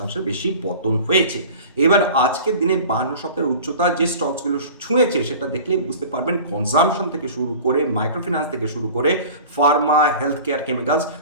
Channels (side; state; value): both; inverted; correlation -0.40